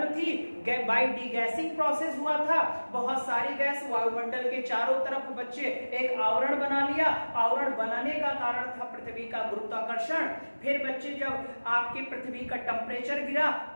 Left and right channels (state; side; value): inverted; both; correlation -1.00